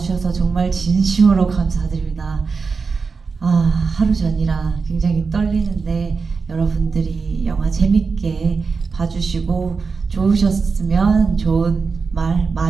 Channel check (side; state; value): left; quieter; 4.9 dB